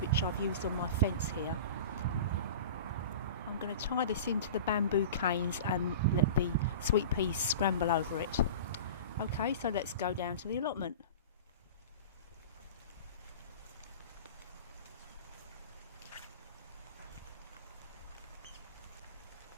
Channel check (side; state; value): both; inverted; correlation -0.34